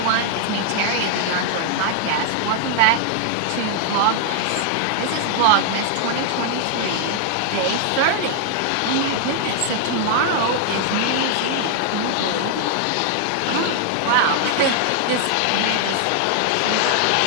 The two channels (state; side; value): different; both; correlation 0.00